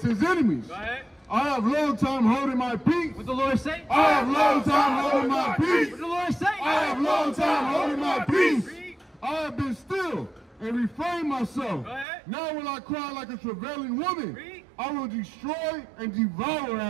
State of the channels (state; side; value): drops out; left; at 12.1 s